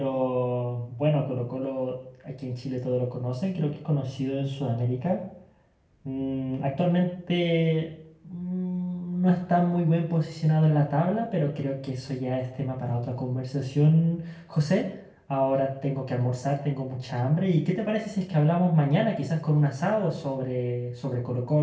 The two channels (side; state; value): both; identical; correlation 1.00